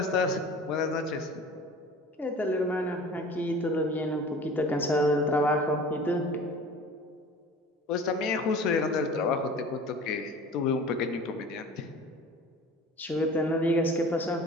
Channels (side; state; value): both; normal; correlation 0.42